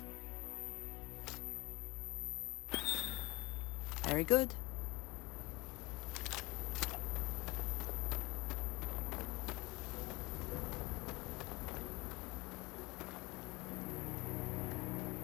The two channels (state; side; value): quieter; right; 23.0 dB